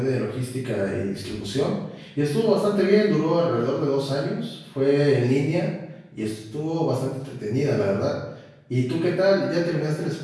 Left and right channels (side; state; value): both; identical; correlation 1.00